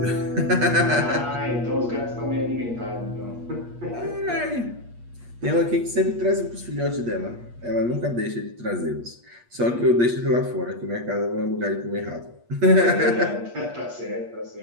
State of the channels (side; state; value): left; late; 8.4 ms